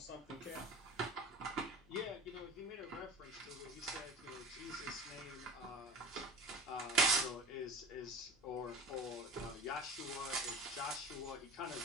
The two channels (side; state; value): left; noise; hum, 27 dB below the sound